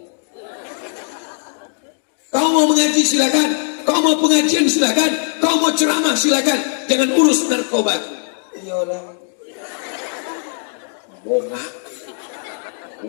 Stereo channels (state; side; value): silent; right; digital silence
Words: Kau mau mengaji silakan, kau mau pengajian silakan, kau mau ceramah silakan, jangan urus narkobaku. Iyalah, bongak,